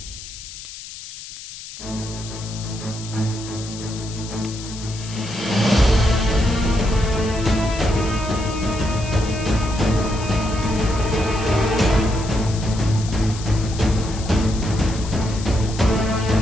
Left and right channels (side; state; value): left; noise; hiss, 13 dB below the sound